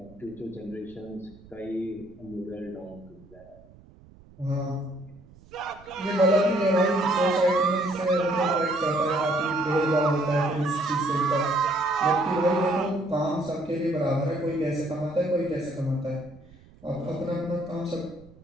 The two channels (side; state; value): right; noise; rumble, 24 dB below the sound